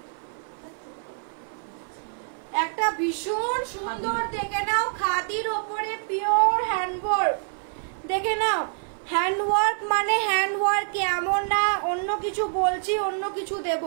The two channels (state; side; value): silent; left; 55 dB below the other